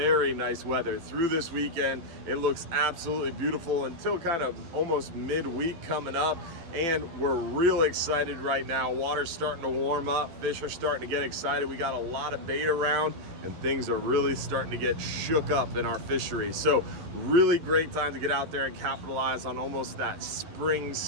nice weather through this weekend. It looks absolutely beautiful until kind of almost midweek coming up. And we're real excited right now. Water's starting to warm up. Fish are starting to get excited. We got a lot of bait around and things are really starting to get shook up in our fishery. So really great time to get out there and capitalize on almost that spring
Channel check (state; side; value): late; left; 12 ms